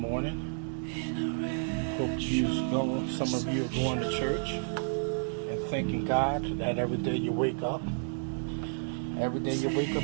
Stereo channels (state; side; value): silent; left; digital silence